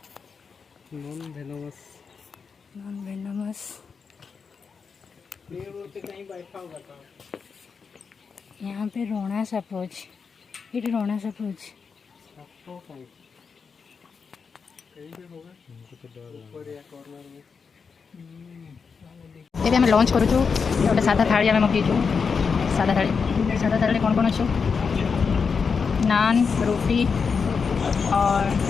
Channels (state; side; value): quieter; right; 5.6 dB